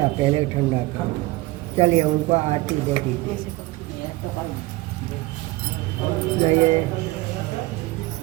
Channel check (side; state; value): left; quieter; 20.5 dB